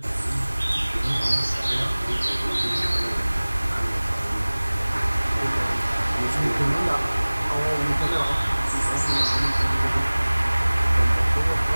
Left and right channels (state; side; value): inverted; both; correlation -1.00